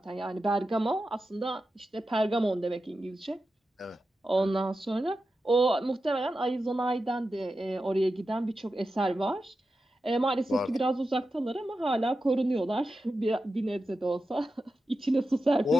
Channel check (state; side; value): normal; both; correlation 0.91